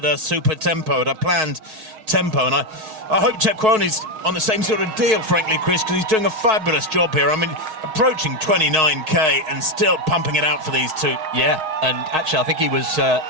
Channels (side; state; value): left; late; 6.4 ms